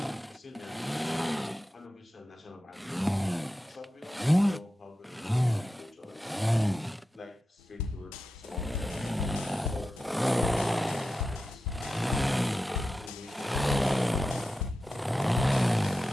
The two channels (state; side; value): normal; both; correlation 0.92